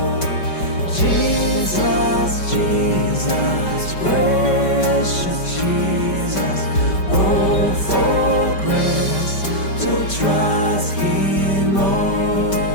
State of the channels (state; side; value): late; right; 5.2 ms